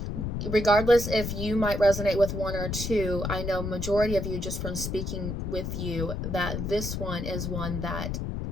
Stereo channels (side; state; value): left; noise; rumble, 3 dB below the sound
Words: regardless if you might resonate with 1 or 2, I know majority of you, just from speaking with you, that this one is one that